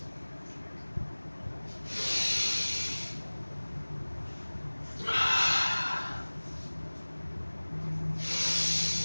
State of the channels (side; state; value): both; inverted; correlation -1.00